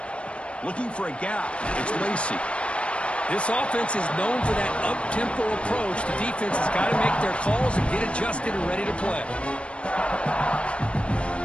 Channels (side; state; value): right; late; 0.059 ms